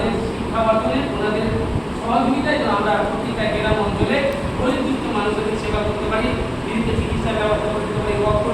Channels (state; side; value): identical; both; correlation 1.00